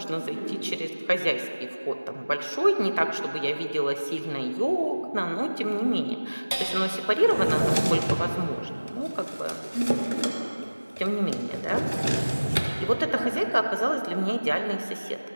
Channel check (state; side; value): inverted; both; correlation -1.00